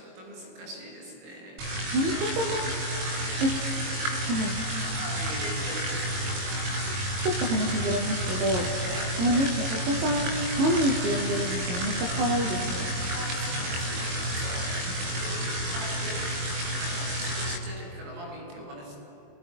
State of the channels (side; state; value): left; late; 22 ms